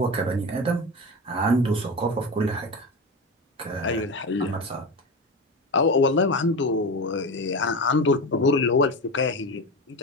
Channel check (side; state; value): both; normal; correlation 0.23